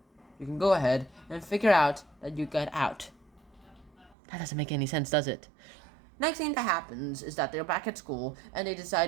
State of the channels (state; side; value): drops out; left; at 4.2 s